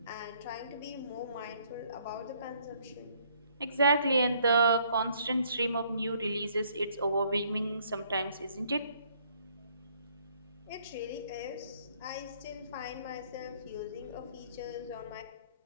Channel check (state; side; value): inverted; both; correlation -0.65